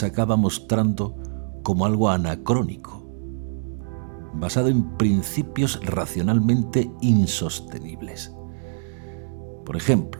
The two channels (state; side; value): silent; left; digital silence